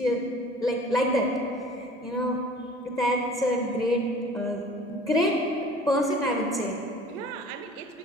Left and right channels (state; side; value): normal; both; correlation 0.46